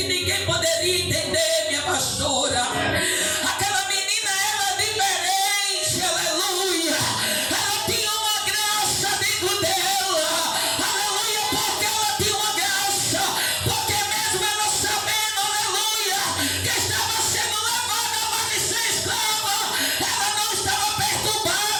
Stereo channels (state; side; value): identical; both; correlation 1.00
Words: ninguém poderia entender, minha pastora. Aquela menina era diferente, aleluia. Ela tinha uma graça dentro dela, aleluia, porque ela tinha uma graça. Porque mesmo ela sabendo, aleluia, que estava sendo levada para ser escrava, ela não estava